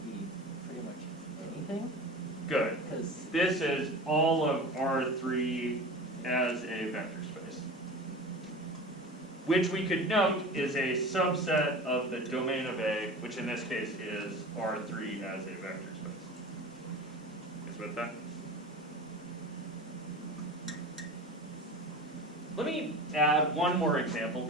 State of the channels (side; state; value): both; normal; correlation 0.34